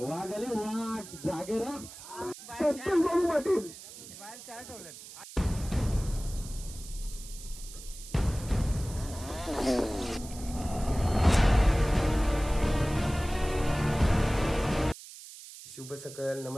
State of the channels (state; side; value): noise; right; hiss, 15 dB below the sound